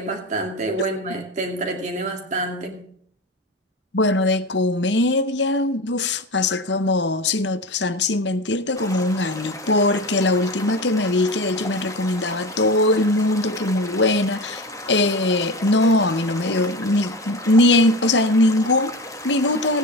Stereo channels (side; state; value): both; normal; correlation 0.27